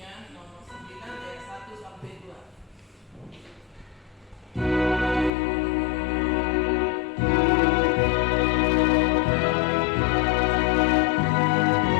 nomor 9 ayat 1 sampai 2.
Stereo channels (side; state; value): right; drops out; at 5.3 s